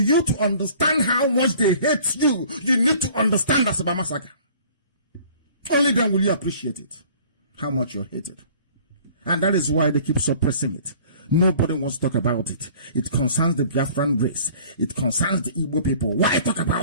to understand how much they hate you, you need to understand Asaba Massacre. Only then will you appreciate it, how much you're hated. And that is why they keep suppressing it. Nobody wants to talk about it. It concerns the Biafran race. It concerns the Igbo people. Why talk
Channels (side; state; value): both; inverted; correlation -0.51